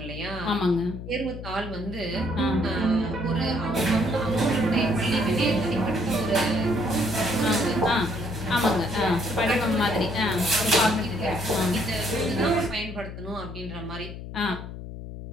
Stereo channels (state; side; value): noise; left; hum, 10 dB below the sound